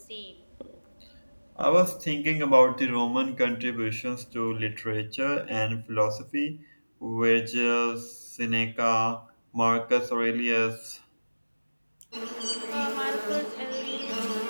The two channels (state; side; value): inverted; both; correlation -1.00